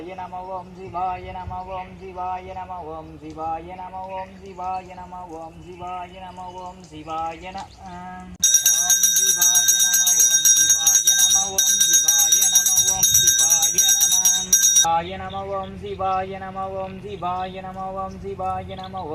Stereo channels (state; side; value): identical; both; correlation 1.00